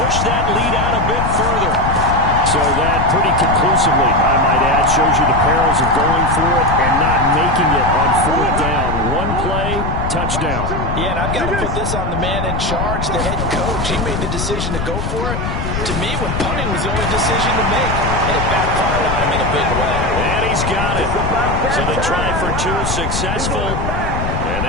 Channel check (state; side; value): noise; left; rumble, 3 dB below the sound